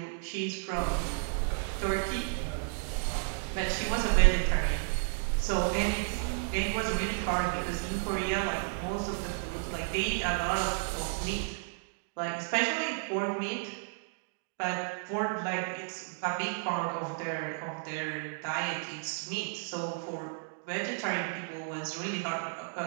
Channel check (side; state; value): left; silent; digital silence